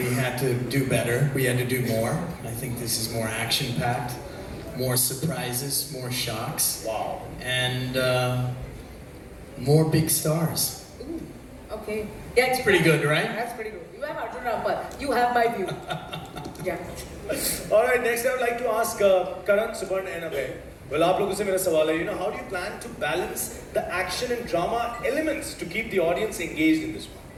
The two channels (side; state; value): both; identical; correlation 1.00